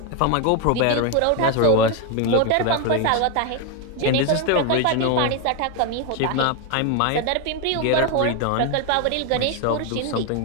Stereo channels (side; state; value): both; different; correlation 0.01